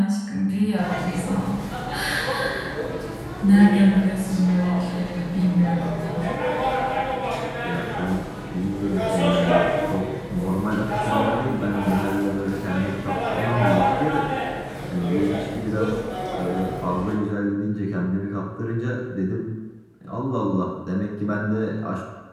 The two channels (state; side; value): identical; both; correlation 1.00